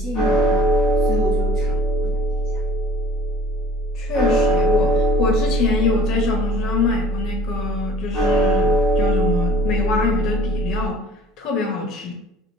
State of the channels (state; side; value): normal; both; correlation 0.50